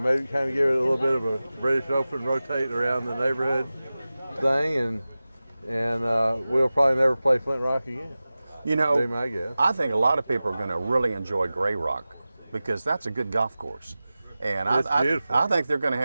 Maybe kind of give it a little bit of a British Open, rotate around the neighborhood thing, and we'll probably never play Flint Rock again. Be my guess. I think a lot of people are going to really enjoy Gray Rock because that's a good golf course. And I think they're going to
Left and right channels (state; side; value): inverted; both; correlation -0.96